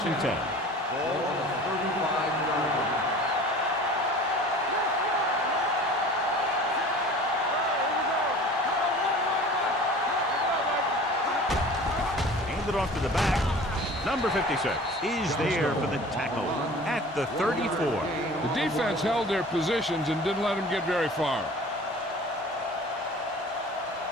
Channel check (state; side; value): normal; both; correlation 0.43